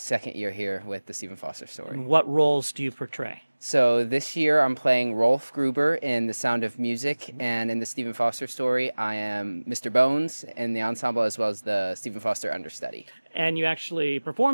year here with the Stephen Foster story. And what roles do you portray? So this year I'm playing Rolf Gruber in The Sound of Music, and in the Stephen Foster story I am Mr. Bones in the ensemble as well as the Stephen Foster understudy. And you actually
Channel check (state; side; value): inverted; both; correlation -1.00